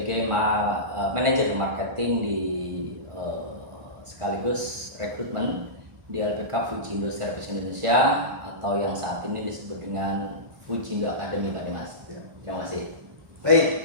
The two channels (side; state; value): left; late; 1.5 ms